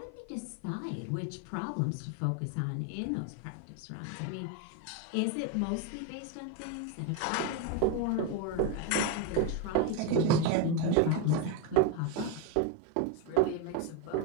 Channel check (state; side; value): different; both; correlation 0.02